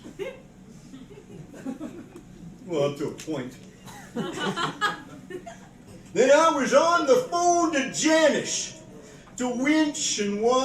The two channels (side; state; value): both; identical; correlation 1.00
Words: Well, up to a point. Then I was on the phone to Janice to winch and